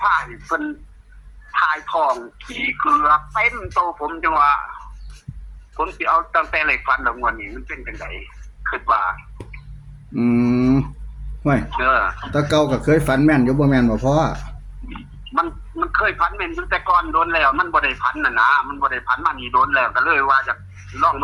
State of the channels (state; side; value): identical; both; correlation 1.00